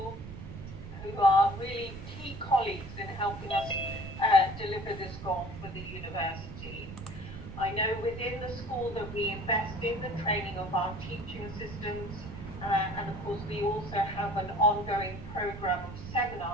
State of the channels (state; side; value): noise; right; rumble, 11 dB below the sound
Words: who are really key colleagues in helping us deliver this goal for the university. I know within the school that we invest in the training of our teaching assistants, and of course we also have an ongoing program of